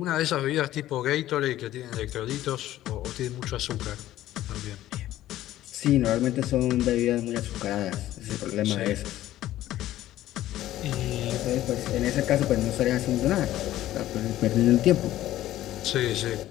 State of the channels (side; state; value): right; quieter; 14.1 dB